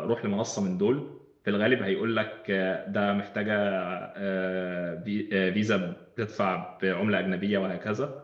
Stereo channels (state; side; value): identical; both; correlation 1.00